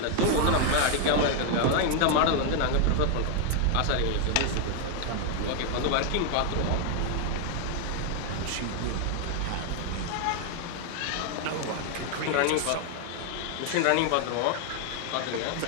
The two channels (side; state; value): both; different; correlation 0.00